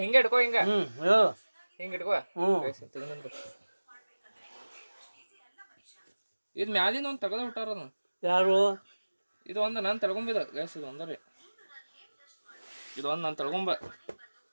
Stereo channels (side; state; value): both; inverted; correlation -1.00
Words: ಹಿಂಗೆ ಇಟ್ಕೋ ಹಿಂಗೆ ಹೇಳು ಹಿಂಗೆ ಇಟ್ಕೋ ಇದು ಮ್ಯಾಲಿಂದ ಒಂದು ತೆಗೆದು ಬಿಟ್ಟಾರ ಅದನ್ನ ಯಾರು ಇದು ಒಂದು ನಾನು ತಳ್ಕೊಂಬಿದ ಗ್ಯಾಸ್ ಇದು ಒಂದರಿ ಇದು ಒಂದು ನಾನು ತಳ್ಕೊಂಬ